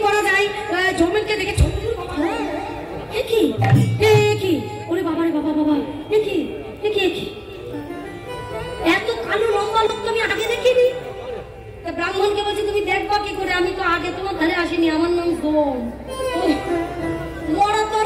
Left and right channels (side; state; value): both; identical; correlation 1.00